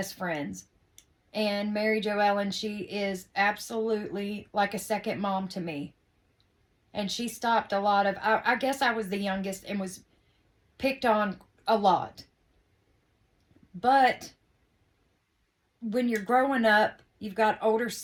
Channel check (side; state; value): both; identical; correlation 1.00